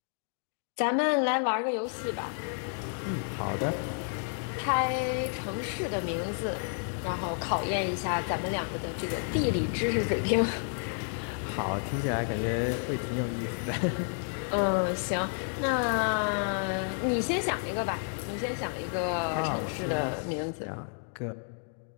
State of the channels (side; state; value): right; silent; 57 dB below the other